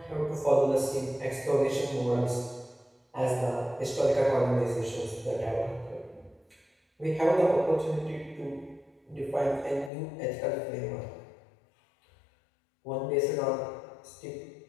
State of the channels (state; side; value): drops out; right; at 9.9 s